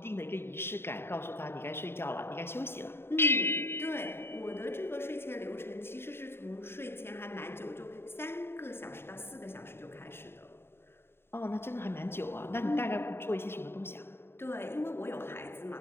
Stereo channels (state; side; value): late; right; 0.11 ms